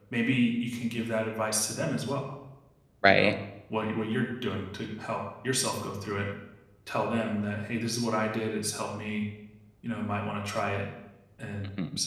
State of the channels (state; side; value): identical; both; correlation 1.00